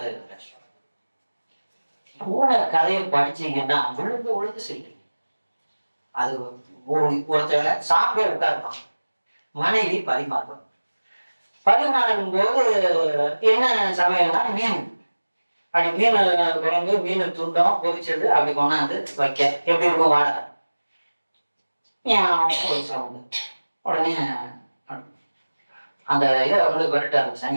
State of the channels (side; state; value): both; inverted; correlation -1.00